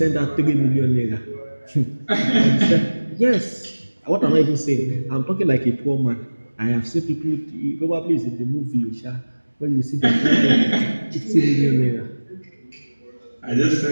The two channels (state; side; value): inverted; both; correlation -1.00